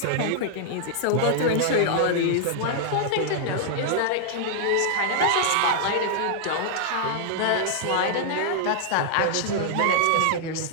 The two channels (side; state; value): both; different; correlation -0.01